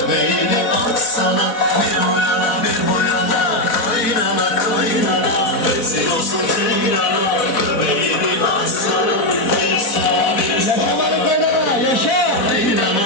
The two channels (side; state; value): right; late; 4.0 ms